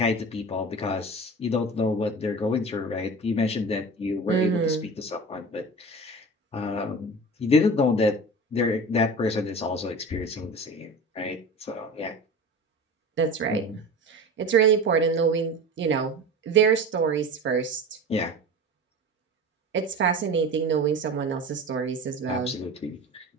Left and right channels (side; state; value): both; normal; correlation 0.34